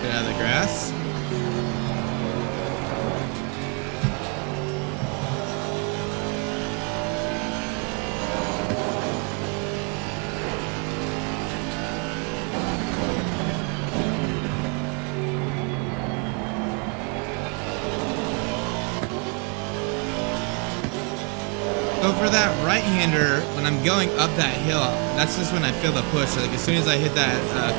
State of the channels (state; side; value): quieter; left; 35.1 dB